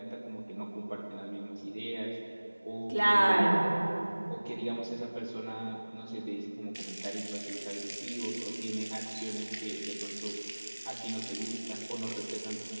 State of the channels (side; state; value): both; inverted; correlation -1.00